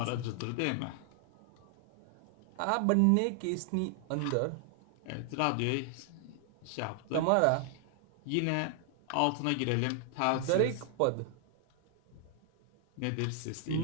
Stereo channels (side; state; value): both; different; correlation 0.00